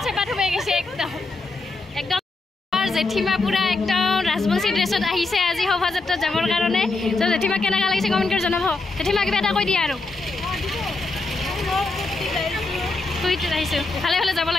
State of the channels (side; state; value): right; quieter; 3.4 dB